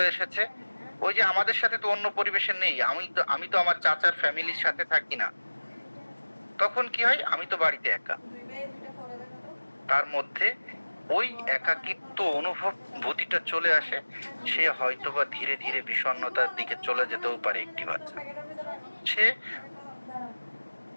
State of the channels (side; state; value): both; inverted; correlation -1.00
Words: এসেছে। ওই যে আমাদের সাথে তো অন্য পরিবেশের নেই, আমি তো আমার চাচার ফ্যামিলির সাথে থাকি না, তখন কি হয়, আমি তো বাড়িতে একা। তার মধ্যে ওই একাকিত্ব অনুভূতিটা চলে আসে, সে হয়তোবা ধীরে ধীরে বিষণ্ণতার দিকে চলে যেতেও পারে একটি বাচ্চা। সে